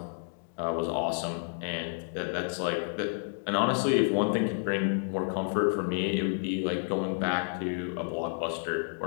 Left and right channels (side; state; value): right; silent; digital silence